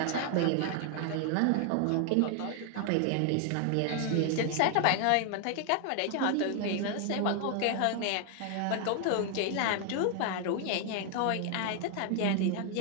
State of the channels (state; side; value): different; both; correlation 0.00